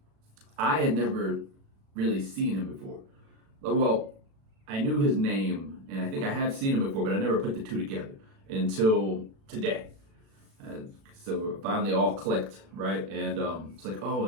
I had never really seen him before. Well, I knew his name, and I think I have seen him before, but I never put the two together until today. So it finally all clicked, right? And it's like, oh,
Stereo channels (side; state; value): left; late; 36 ms